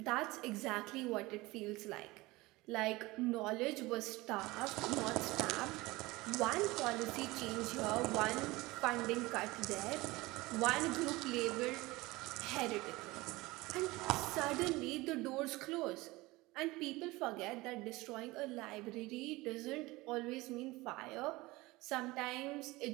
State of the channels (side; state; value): left; quieter; 21.0 dB